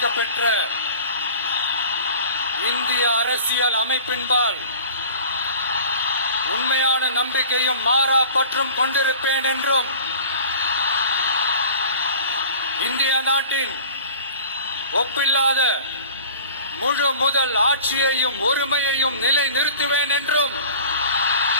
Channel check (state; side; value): inverted; both; correlation -0.44